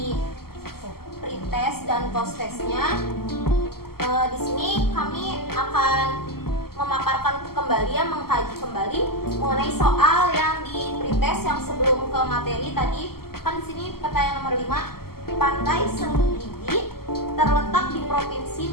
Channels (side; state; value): right; late; 0.94 ms